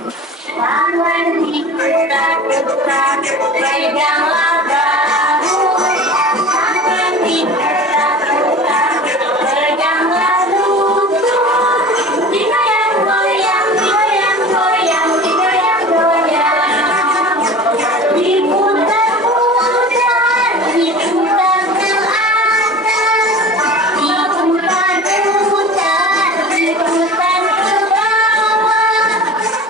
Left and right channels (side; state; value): both; normal; correlation 0.38